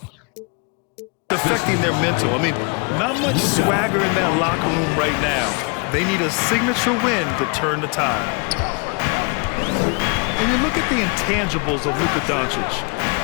affecting their mental. I mean, not much swagger in that locker room right now. They need a signature win to turn the tide. And you look at the intangibles of LUKA Doncic.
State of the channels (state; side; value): quieter; right; 33.4 dB